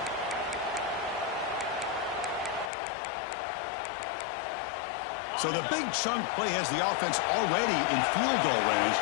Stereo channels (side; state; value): right; drops out; at 2.7 s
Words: So the big chunk play has the offense already in field goal range